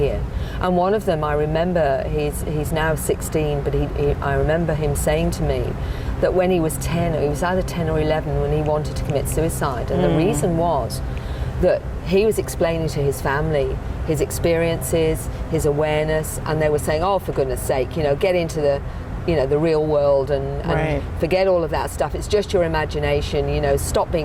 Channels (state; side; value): identical; both; correlation 1.00